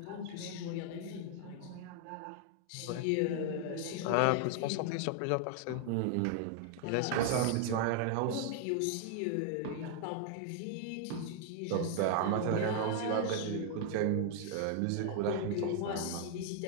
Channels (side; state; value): both; different; correlation 0.00